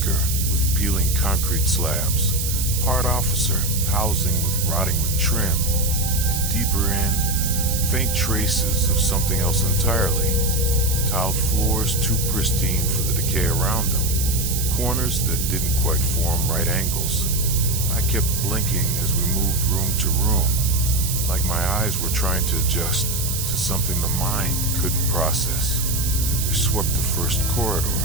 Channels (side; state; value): right; noise; hiss, 3 dB below the sound